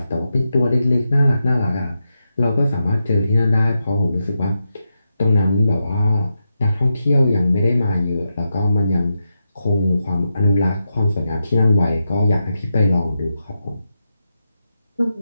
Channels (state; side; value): inverted; both; correlation -0.87